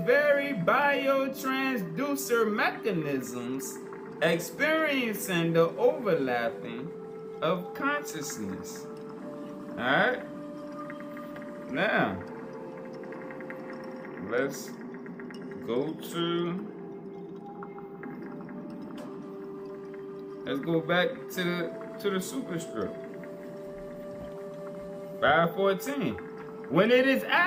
very biotransducer mechanisms, experiencing the overlapping of consciousness. Alright? Now, let's let's go back to the superstructure. 514. When it is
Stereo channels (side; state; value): both; identical; correlation 1.00